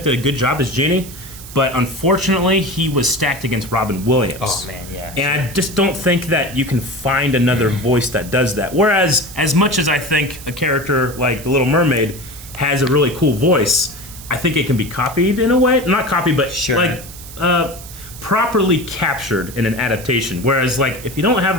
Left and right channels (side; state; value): right; noise; hiss, 15 dB below the sound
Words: did a good job as Genie, but unfortunately, he was stacked against Robin Williams. Oh, man, yeah. And I just don't think that you can find another voice that does that. Whereas, as much as I think a character like the Little Mermaid has a really cool voice, I think it can be copied in a way. Not copied, but Sure. like properly captured in an adaptation. Whereas, like, if you don't